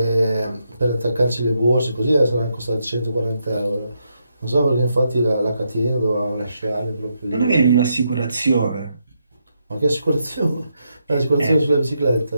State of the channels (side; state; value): both; inverted; correlation -0.80